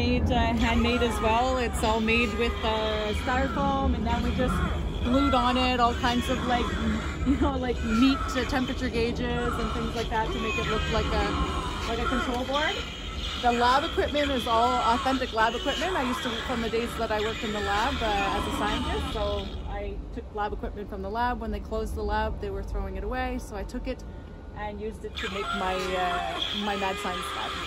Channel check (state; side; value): identical; both; correlation 1.00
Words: handmade as well. It's all made with styrofoam, and then we just glued on it all kinds of like, like meat temperature gauges and things like that to make it look like a control board. The lab equipment is all authentic lab equipment. I used to, from the days that I worked in the lab as a scientist, so I took lab equipment from the lab. When they closed the lab, they were throwing it away, so I took it and used it to make my my mad science lab.